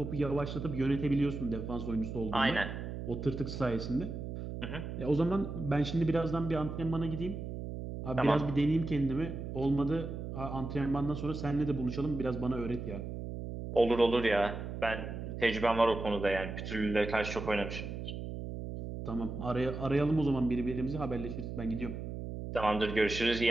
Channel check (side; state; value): right; noise; hum, 7 dB below the sound